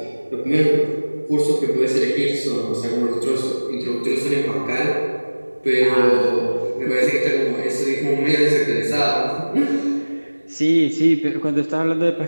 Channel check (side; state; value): both; inverted; correlation -1.00